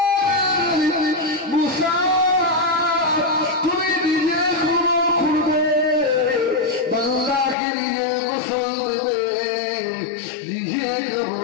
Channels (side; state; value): right; drops out; at 7.6 s